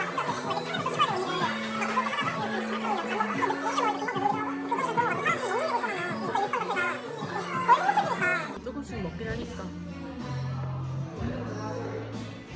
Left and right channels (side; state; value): both; identical; correlation 1.00